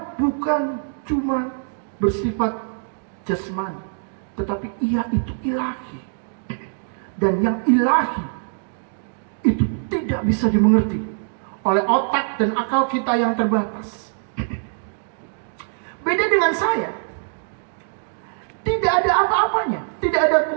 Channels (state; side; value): silent; left; digital silence